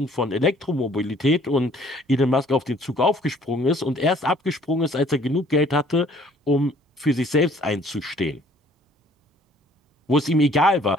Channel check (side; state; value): both; normal; correlation 0.58